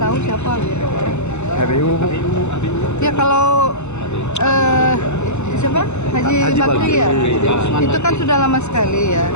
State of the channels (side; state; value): right; late; 0.82 ms